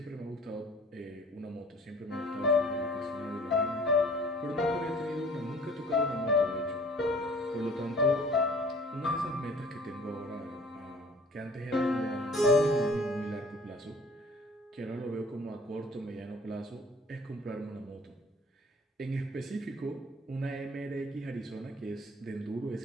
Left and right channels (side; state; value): both; normal; correlation 0.50